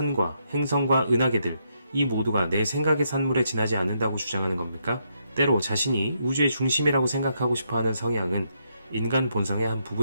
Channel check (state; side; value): inverted; both; correlation -0.77